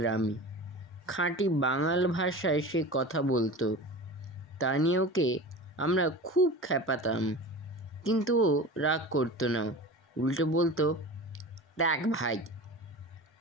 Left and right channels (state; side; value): normal; both; correlation 0.33